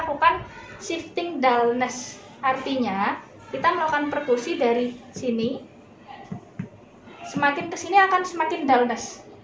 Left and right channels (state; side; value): identical; both; correlation 1.00